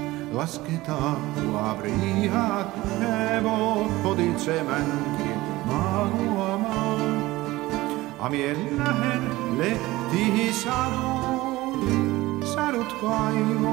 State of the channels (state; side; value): quieter; left; 18.7 dB